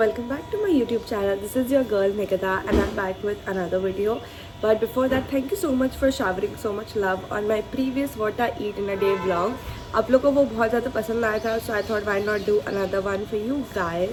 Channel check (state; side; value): identical; both; correlation 1.00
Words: back to my YouTube channel. This is your girl Nikita and I'm back with another video. But before that, thank you so much for showering so much love on my previous what I eat in a day vlog. आप लोगों को वो बहुत ज़्यादा पसंद आया था, so I thought why not do another one for you